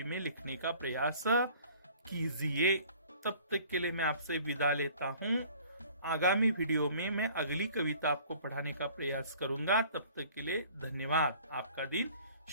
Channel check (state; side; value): inverted; both; correlation -0.51